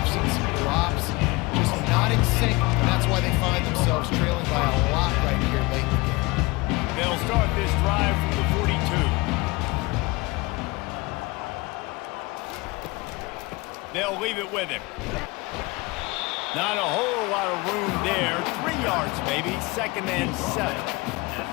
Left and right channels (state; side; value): quieter; right; 23.9 dB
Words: seen some drops. Just not in sync. And that's why they find themselves trailing by a lot right here late in the game. They'll start this drive from the 42. They'll leave it with him. Not a whole lot of room there. 3 yards maybe. 2nd and 7.